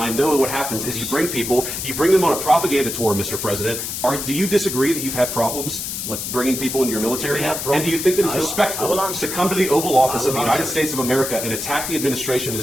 know what happens is you bring people, you bring them on a propaganda tour, Mr. President. Do you disagree that you've had problems with bringing people into your military? And do you think that it's respectful to come to the Oval Office of the United States of America and attack the administration that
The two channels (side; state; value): left; noise; hiss, 5 dB below the sound